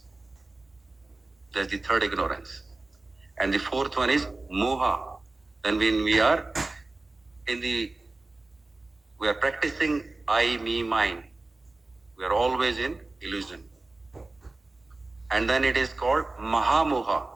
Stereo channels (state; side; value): quieter; left; 3.2 dB